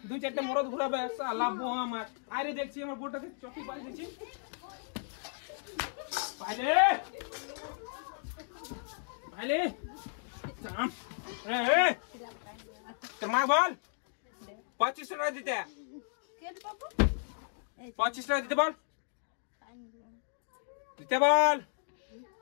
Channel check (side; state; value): right; silent; digital silence